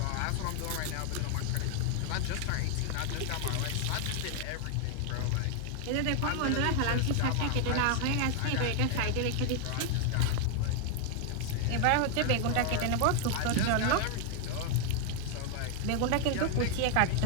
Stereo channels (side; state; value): both; different; correlation 0.00